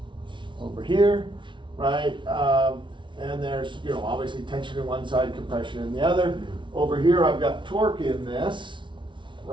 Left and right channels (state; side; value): late; left; 0.24 ms